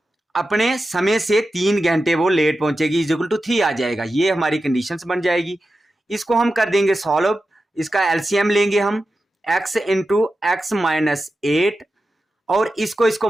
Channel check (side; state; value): both; normal; correlation 0.92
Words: अपने समय से 3 घंटे वो लेट पहुंचेगी, इज इक्वल टू 3 आ जाएगा। ये हमारी कंडीशंस बन जाएगी। इसको हम कर देंगे सॉल्व, इसका एलसीएम लेंगे हम, x इंटू एक्स माइनस 8, और इसको